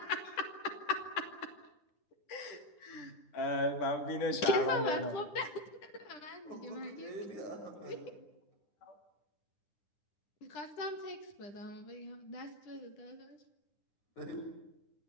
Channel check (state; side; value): late; right; 9.9 ms